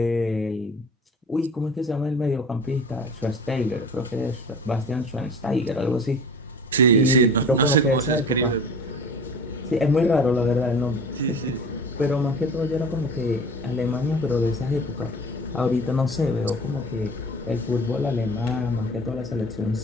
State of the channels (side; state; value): both; normal; correlation 0.41